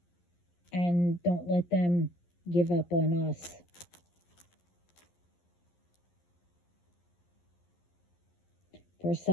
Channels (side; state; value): right; late; 11 ms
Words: and don't let them give up on us. For